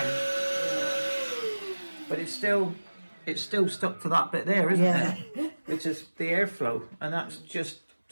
Yeah. But it's still stuck to that bit there, isn't it? Which is the airflow. And that's just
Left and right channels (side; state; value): both; inverted; correlation -1.00